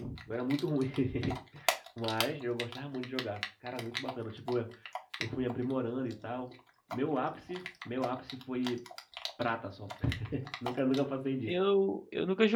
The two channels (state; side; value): identical; both; correlation 1.00